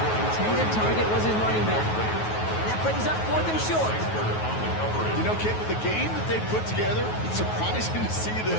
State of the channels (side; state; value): right; late; 9.3 ms